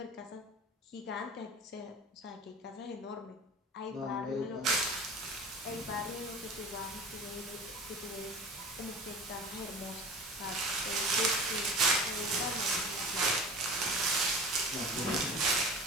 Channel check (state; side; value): normal; both; correlation 0.37